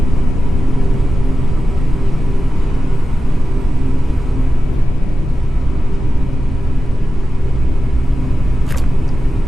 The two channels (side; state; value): both; normal; correlation 0.93